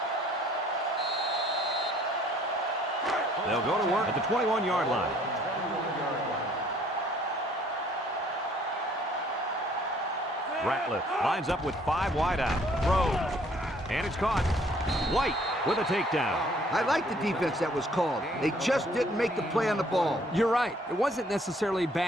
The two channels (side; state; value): both; normal; correlation 0.60